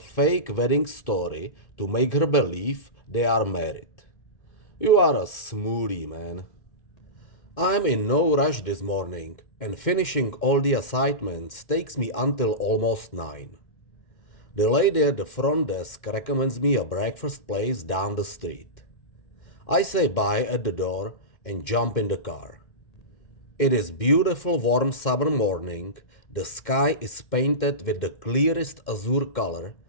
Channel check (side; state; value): right; late; 2.1 ms